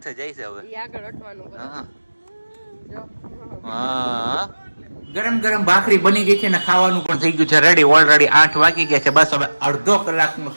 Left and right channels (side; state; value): both; inverted; correlation -1.00